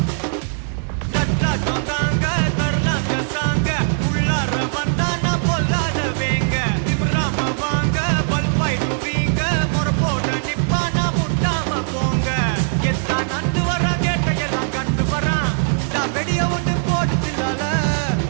தட்டாட்டம் தாங்க தரலாங்க சாங்க உள்ளார வந்தானா பொல்லாத வேங்க, திம்ராம வாங்க பல்பாயிடுவீங்க முறப்போட நிப்பானா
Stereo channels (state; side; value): silent; left; digital silence